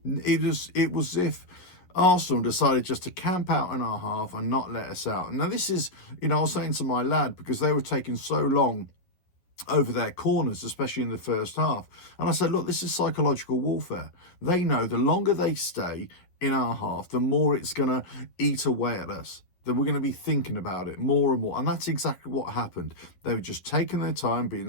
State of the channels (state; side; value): late; right; 11 ms